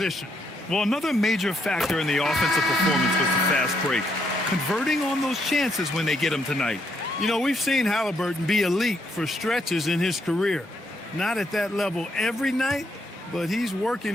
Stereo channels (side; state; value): both; normal; correlation 0.75